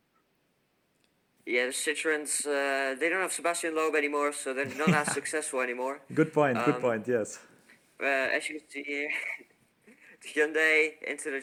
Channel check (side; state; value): both; identical; correlation 1.00